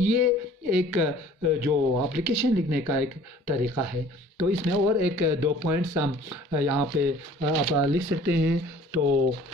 ایک جو اپلیکیشن لکھنے کا ایک طریقہ ہے. تو اس میں اور ایک 2 پوائنٹس ہم یہاں پہ آپ لکھ سکتے ہیں. تو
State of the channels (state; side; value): normal; both; correlation 0.51